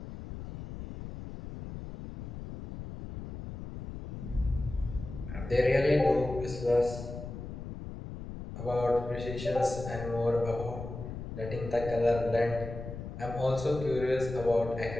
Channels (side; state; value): left; noise; rumble, 9 dB below the sound